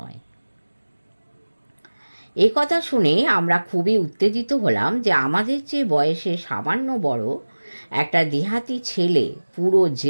এ কথা শুনে আমরা খুবই উত্তেজিত হলাম যে আমাদের চেয়ে বয়সে সামান্য বড় একটা দেহাতি ছেলে পুরো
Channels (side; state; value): both; inverted; correlation -1.00